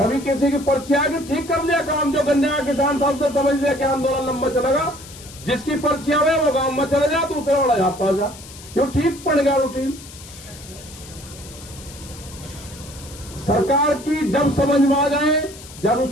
किसी की पर्ची आ गई, ठीक कर लिया काम। जो गन्ने का किसान था उसने समझ लिया कि आंदोलन लंबा चलेगा, जिसकी पर्ची आवे वो गांव में चले जा, दूसरे वाला यहाँ पर जा, क्यों ठीक पड़ गया रूटीन। सरकार की जब समझ में आ जाए, जब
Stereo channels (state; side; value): noise; left; hiss, 17 dB below the sound